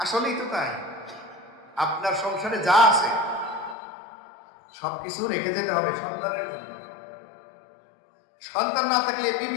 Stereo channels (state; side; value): drops out; right; at 3.8 s